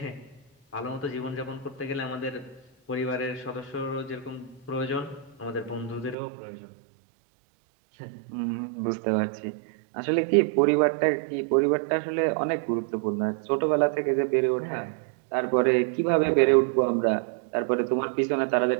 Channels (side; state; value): left; drops out; at 6.2 s